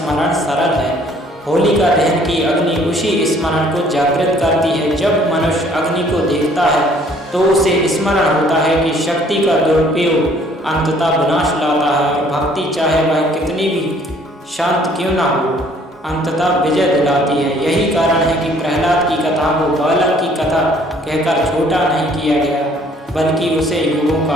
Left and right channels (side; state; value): both; normal; correlation 0.59